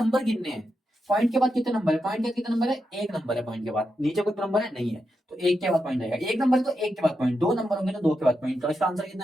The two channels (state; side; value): normal; both; correlation 0.86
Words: गिनने हैं, पॉइंट के बाद कितने नंबर है, पॉइंट के बाद कितने नंबर है, एक नंबर है, पॉइंट के बाद नीचे कोई नंबर है नहीं है, तो एक के बाद पॉइंट आएगा, एक नंबर है तो एक के बाद पॉइंट, दो नंबर होंगे तो दो के बाद पॉइंट, तो इसका आंसर